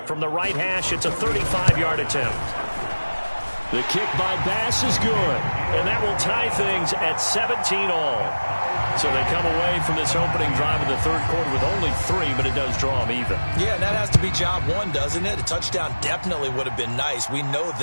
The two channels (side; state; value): both; inverted; correlation -1.00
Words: From the right hash, it's a 35-yard attempt. The kick by Bass is good. And that will tie things at 17 all. So they come away from this opening drive in the 3rd quarter with only 3, but it does draw them even. Yeah, and that has to be job 1, doesn't it? A touchdown definitely would have been nice. We know